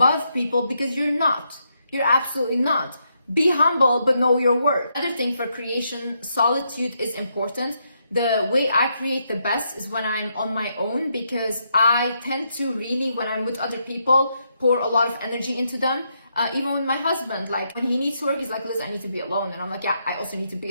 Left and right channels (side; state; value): both; inverted; correlation -0.79